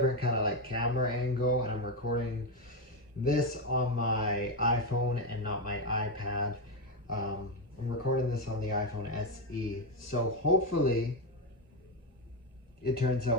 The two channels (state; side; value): normal; both; correlation 0.09